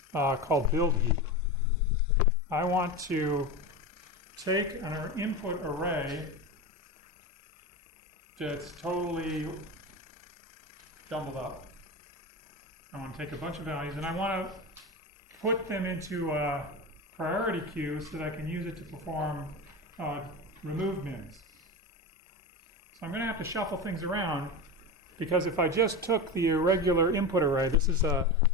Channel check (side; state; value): both; normal; correlation 0.23